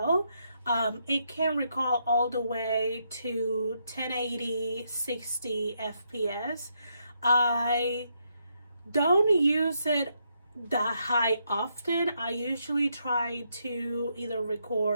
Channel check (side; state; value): both; inverted; correlation -0.78